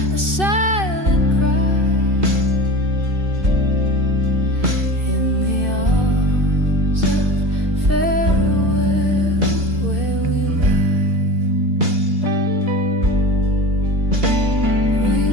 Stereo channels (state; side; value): late; left; 2.7 ms